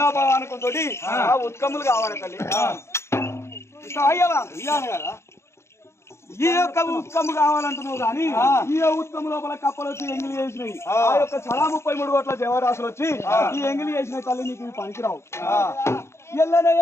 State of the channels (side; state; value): right; late; 0.13 ms